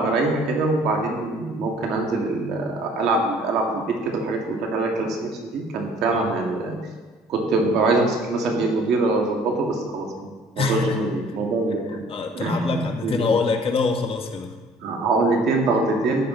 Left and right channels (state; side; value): normal; both; correlation 0.54